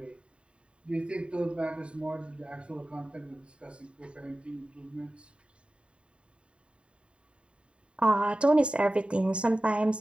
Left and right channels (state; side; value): late; left; 0.057 ms